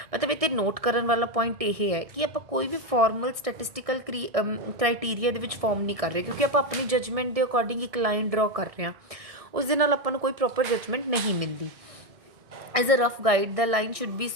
मतलब इतने note करने वाला point ये है कि आप कोई भी formal statistical criteria they which form नहीं कर रहे, क्योंकि आप अपनी जजमेंट के अकॉर्डिंग एक लाइन ड्रॉ कर रहे हैं, उस दे नाल आपां नूं कोई प्रॉपर जजमेंट नहीं मिलती। As a rough guide, the line should be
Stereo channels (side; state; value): left; late; 1.6 ms